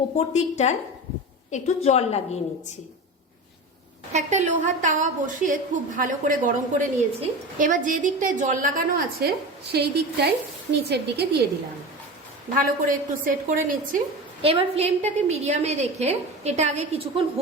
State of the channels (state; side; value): normal; both; correlation 0.28